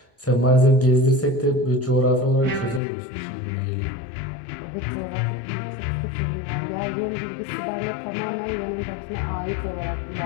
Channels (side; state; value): right; drops out; at 2.8 s